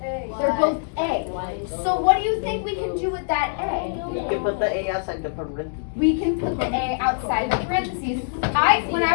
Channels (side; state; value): right; silent; digital silence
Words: They're both A. So what do you think we can do with that A? You can put the A outside the parentheses. We can put the A outside the parentheses. When